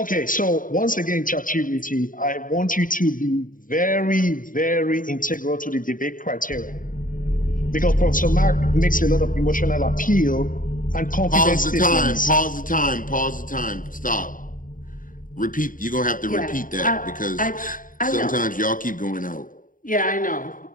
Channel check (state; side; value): late; right; 0.39 ms